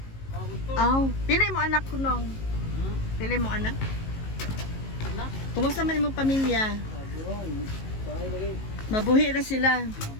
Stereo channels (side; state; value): right; late; 19 ms